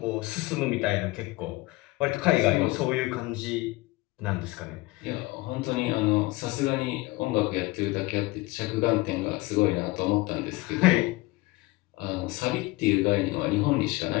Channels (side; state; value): right; quieter; 21.4 dB